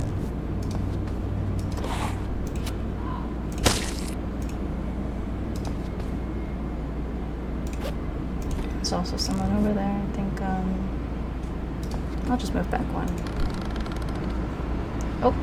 There's also someone over there. I think I'll just move back one. Oh.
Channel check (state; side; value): identical; both; correlation 1.00